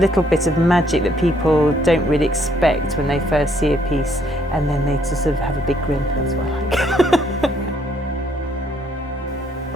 bit of magic that people don't really expect when they first see a piece, and then they just sort of have a big grin. That's what I like.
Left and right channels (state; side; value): normal; both; correlation 0.68